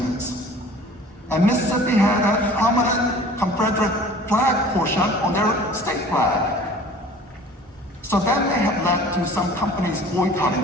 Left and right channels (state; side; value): normal; both; correlation 0.47